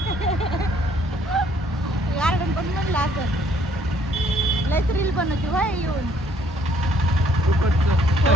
गार्डन पण म्हणलं असं लयच रील बनवते व्हाय येऊन.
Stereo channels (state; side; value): normal; both; correlation 0.64